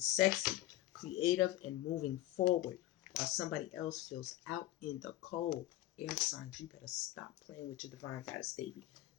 sexy. Creative and moving forward. While somebody else feels out in the cold. Air signs, you better stop playing with your divine goddess, baby.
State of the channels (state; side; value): quieter; right; 15.0 dB